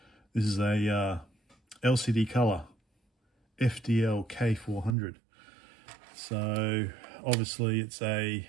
This is a LCD color, FDL-K400. So obviously it's a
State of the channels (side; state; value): left; drops out; at 5.0 s